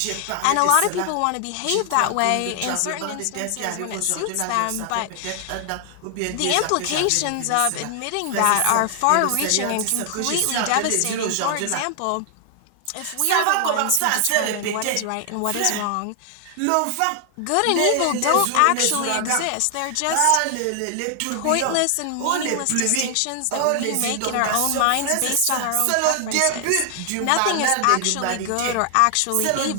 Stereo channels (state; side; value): different; both; correlation 0.00